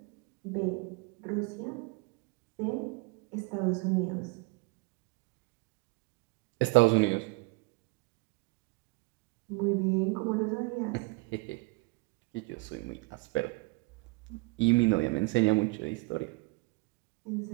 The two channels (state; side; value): quieter; left; 26.0 dB